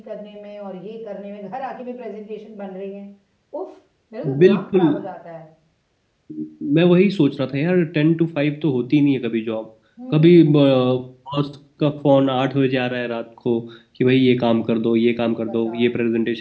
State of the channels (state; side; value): identical; both; correlation 1.00